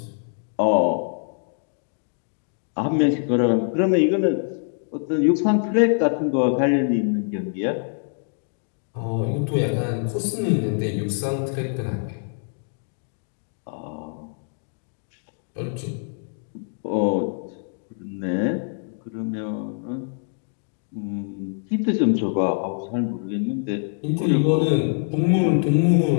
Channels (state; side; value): silent; right; 62 dB below the other